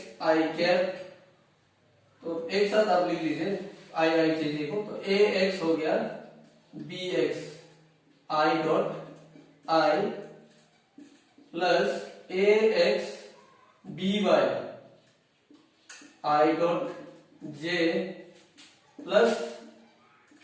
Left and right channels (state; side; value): identical; both; correlation 1.00